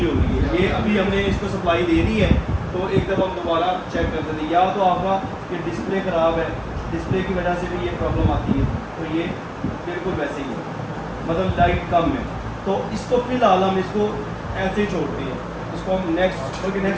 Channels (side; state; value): both; identical; correlation 1.00